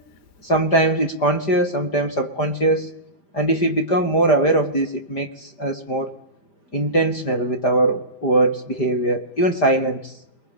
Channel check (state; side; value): late; right; 5.0 ms